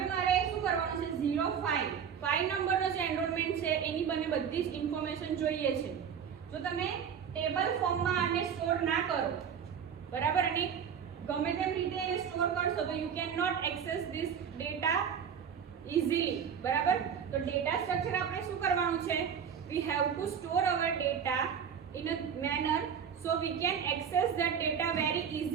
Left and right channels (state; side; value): quieter; left; 7.7 dB